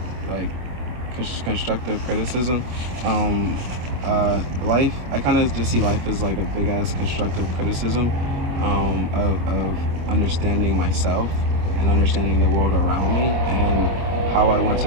like constructive criticism? Life, I kind of just see life as like a big ass constructive criticism of understanding myself and understanding the world around me and how I want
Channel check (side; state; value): left; late; 25 ms